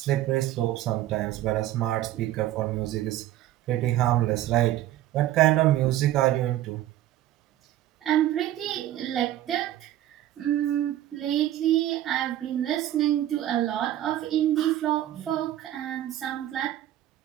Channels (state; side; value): quieter; left; 13.4 dB